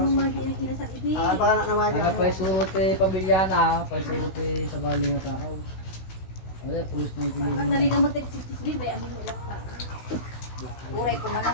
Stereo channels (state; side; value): late; right; 16 ms